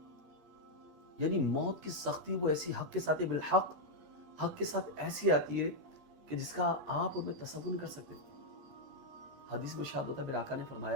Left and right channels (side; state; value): left; late; 8.4 ms